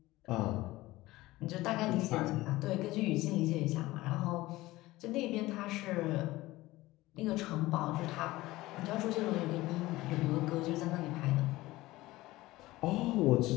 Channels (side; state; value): right; quieter; 18.4 dB